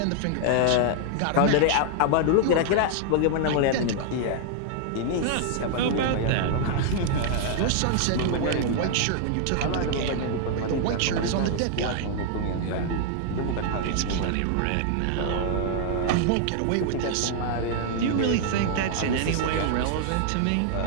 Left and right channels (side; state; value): both; different; correlation 0.00